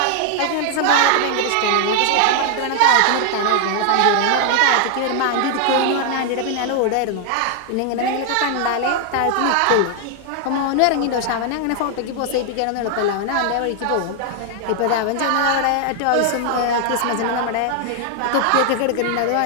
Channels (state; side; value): different; both; correlation 0.00